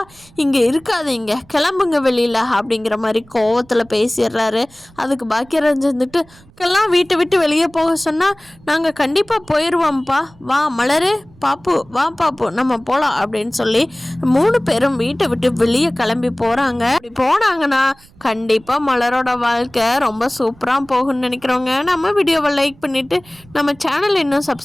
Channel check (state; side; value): noise; right; rumble, 27 dB below the sound